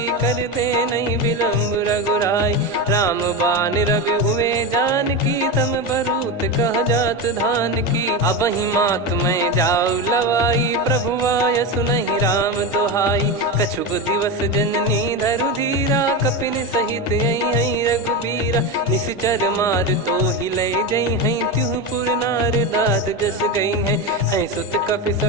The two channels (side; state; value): both; normal; correlation 0.17